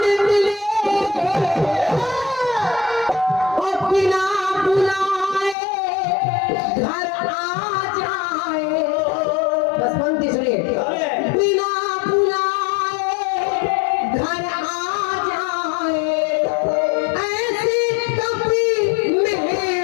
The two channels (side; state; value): right; drops out; at 5.6 s